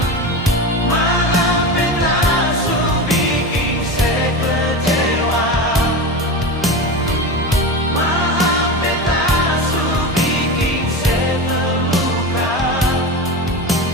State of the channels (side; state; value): both; normal; correlation 0.24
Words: Maafkanlah su bikin saya kecewa. Maafkanlah su bikin saya terluka.